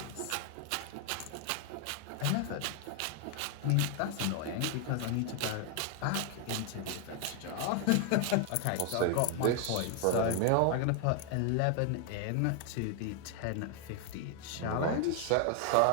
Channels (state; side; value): different; both; correlation 0.00